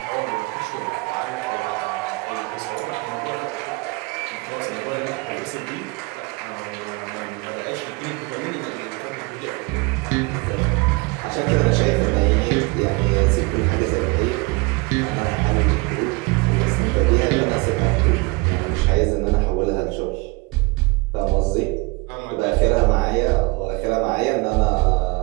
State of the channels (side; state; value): left; quieter; 26.5 dB